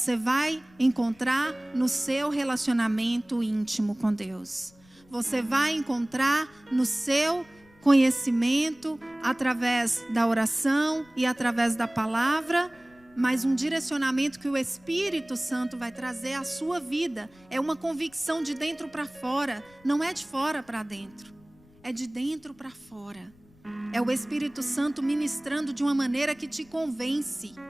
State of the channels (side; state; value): left; noise; rumble, 28 dB below the sound